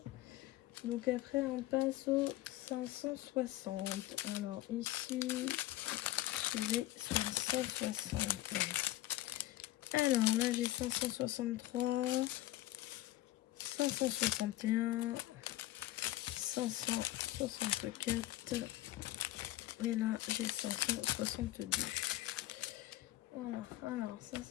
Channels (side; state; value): right; quieter; 15.7 dB